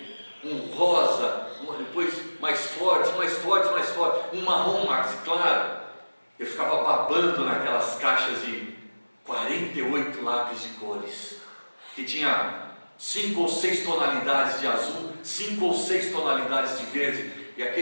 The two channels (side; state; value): both; inverted; correlation -1.00